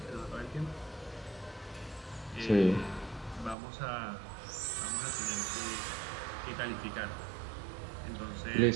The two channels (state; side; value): drops out; left; at 3.6 s